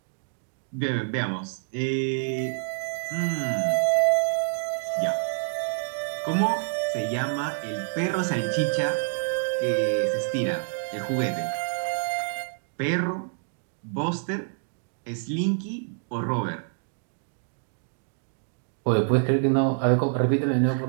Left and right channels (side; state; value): left; silent; digital silence